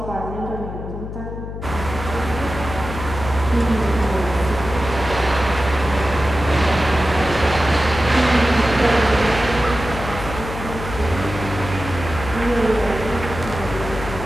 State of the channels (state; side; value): noise; left; hum, 8 dB below the sound